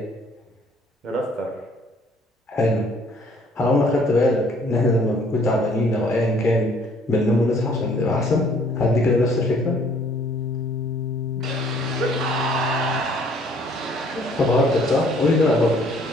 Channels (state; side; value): normal; both; correlation 0.60